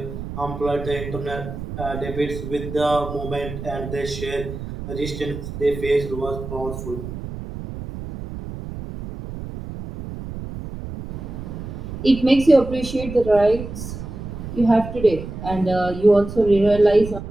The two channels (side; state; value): right; noise; rumble, 9 dB below the sound